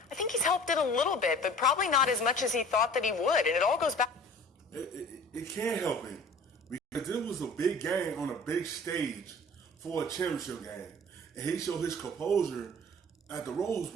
I think he's helped it a little bit, but probably not as much as he thought that he would, and it all goes back. It can't help him because this was a big game on a big stage for a championship game, and he showed his composure at the Rose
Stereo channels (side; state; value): both; normal; correlation 0.45